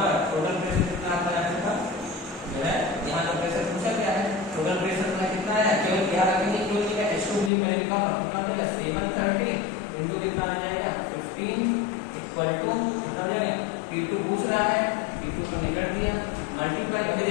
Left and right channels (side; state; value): right; drops out; at 7.5 s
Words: पर टोटल प्रेशर कितना आता है, अपने पास जो है यहाँ का प्रेशर पूछा गया है, टोटल प्रेशर में कितना है, केवल क्या रखेंगे, क्योंकि H2 भी पहले कितना देगा 730 इनटू कितना आ जाएगा 15 इक्वल टू कितना आ जाएगा, P2 पूछ रहा है, P2 को निकाल दिया, मल्टीप्लाई करके